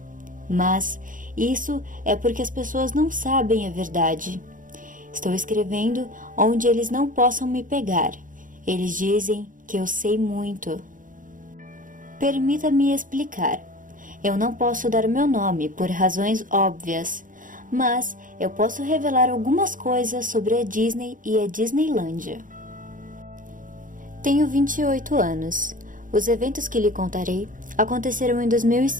Mas isso é porque as pessoas não sabem a verdade. Estou escrevendo onde eles não possam me pegar. Eles dizem que eu sei muito. Permita-me explicar. Eu não posso dar meu nome por razões óbvias, mas eu posso revelar algumas coisas sobre a Disney e a Disneylândia. Tenho 28 anos. Os eventos que lhe contarei aconteceram em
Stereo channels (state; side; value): late; left; 0.39 ms